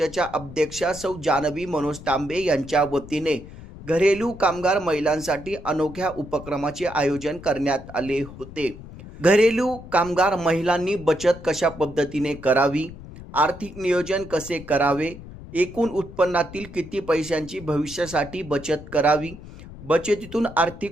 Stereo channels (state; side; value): noise; left; rumble, 15 dB below the sound